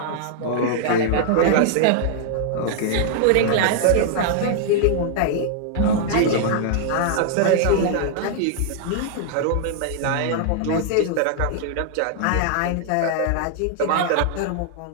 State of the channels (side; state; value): both; different; correlation -0.01